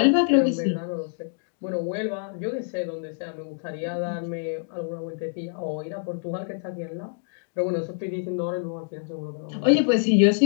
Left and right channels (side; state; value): right; silent; digital silence